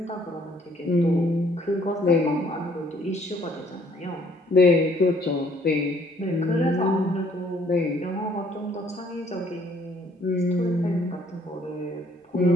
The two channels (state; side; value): normal; both; correlation 0.63